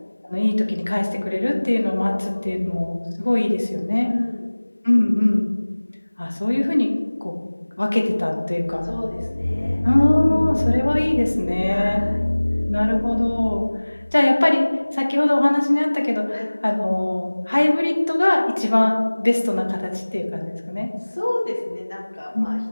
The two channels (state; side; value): inverted; both; correlation -1.00